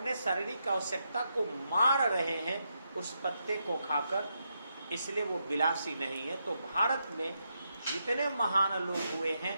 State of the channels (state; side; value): inverted; both; correlation -0.82